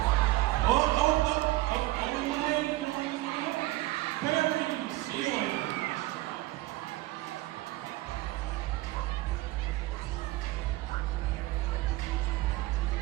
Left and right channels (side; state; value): left; quieter; 18.4 dB